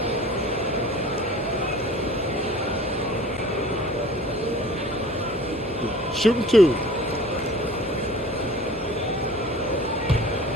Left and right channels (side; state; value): both; normal; correlation 0.45